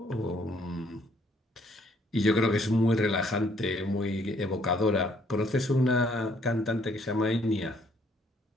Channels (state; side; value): normal; both; correlation 0.65